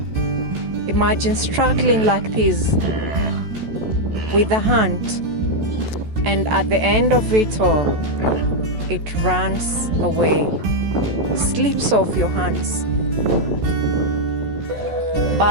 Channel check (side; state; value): left; late; 14 ms